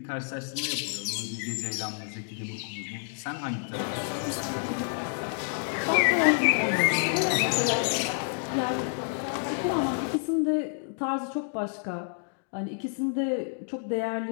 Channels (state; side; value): silent; right; 59 dB below the other